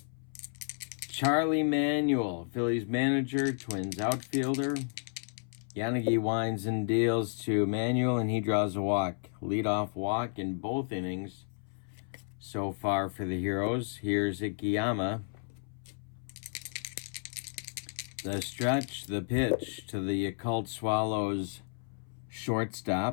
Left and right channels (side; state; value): right; silent; 56 dB below the other